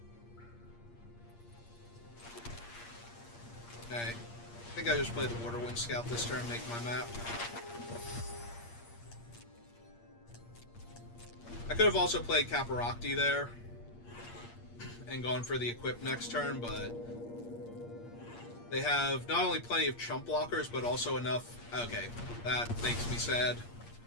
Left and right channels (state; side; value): late; right; 8.6 ms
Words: Okay. I think I just played the Waterwind Scout this turn, make my map. I could have also played Caparocti there and gone for the equip next turn, but they have not only plenty of chump blockers, but also enough... Okay, that makes me sad.